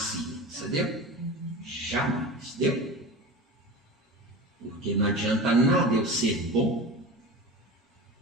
entendeu? Jamais, entendeu? Porque não adianta nada eu ser bom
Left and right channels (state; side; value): normal; both; correlation 0.30